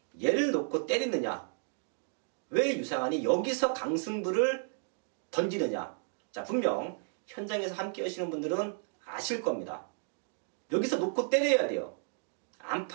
얘를 놓고 때리느냐? 왜 유상한이 여기서 강승부를 던지느냐? 자, 분명 현장에서 함께 하시는 분들은 아실 겁니다. 여기서 놓고 때려야 돼요. 안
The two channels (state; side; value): silent; left; 55 dB below the other